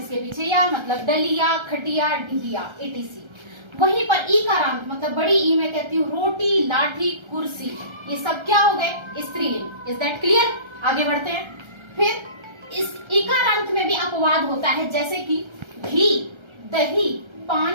पीछे या मतलब डलिया, खटिया, ढिया, etc। वहीं पर ईकारांत मतलब बड़ी ई में कहती हूँ रोटी, लाठी, कुर्सी, ये सब क्या हो गए, स्त्रीलिंग। Is that clear. आगे बढ़ते हैं। फिर इस इकारांत में भी अपवाद होता है, जैसे कि घी, दही,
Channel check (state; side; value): late; left; 1.3 ms